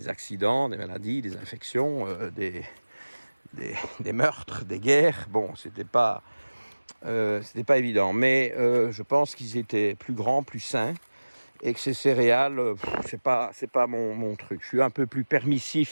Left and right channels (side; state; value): both; inverted; correlation -1.00